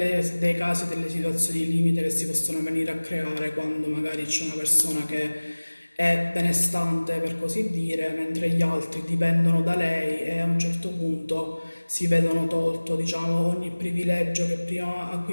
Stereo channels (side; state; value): both; inverted; correlation -1.00